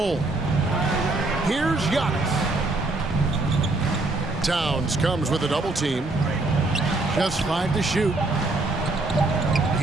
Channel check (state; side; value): quieter; left; 3.0 dB